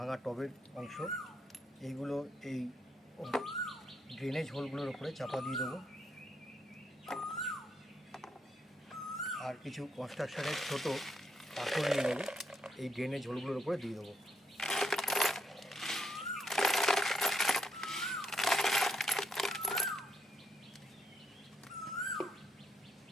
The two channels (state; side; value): normal; both; correlation 0.76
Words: টবের অংশ। এইগুলো এই ড্রেনেজ হোলগুলোর উপরে চাপা দিয়ে দেবো। আর কিছু কনস্ট্রাকশনের ছোটো পাথর নিয়ে নেব, এই ড্রেনেজ হোলগুলোর উপরে দিয়ে দেবো।